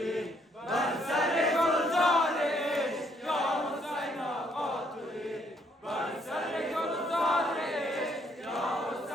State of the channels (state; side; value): normal; both; correlation 0.69